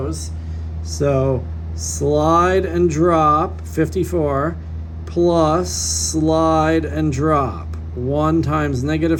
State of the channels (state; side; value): identical; both; correlation 1.00